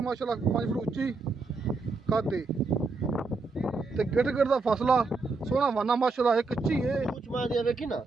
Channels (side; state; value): left; quieter; 3.9 dB